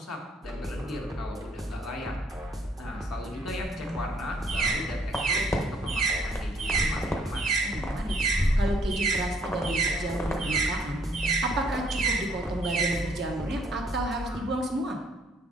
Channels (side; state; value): both; normal; correlation 0.64